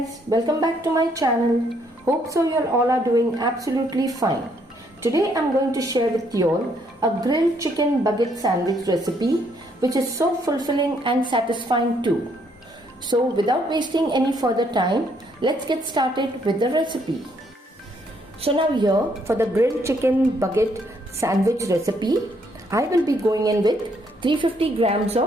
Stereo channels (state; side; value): normal; both; correlation 0.70